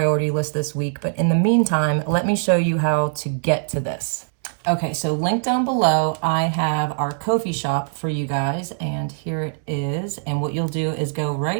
list this week. But in the meantime, let me show you how to get to this. Okay, so link down below, I have our Ko-fi shop for you guys, and here it is. And what you'll do is go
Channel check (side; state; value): left; silent; digital silence